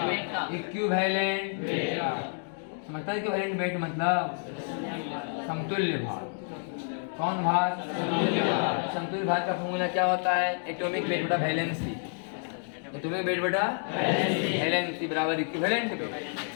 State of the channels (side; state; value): right; silent; 58 dB below the other